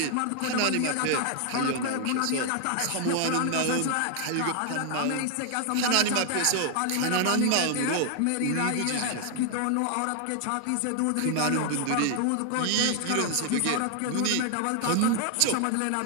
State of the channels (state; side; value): different; both; correlation 0.00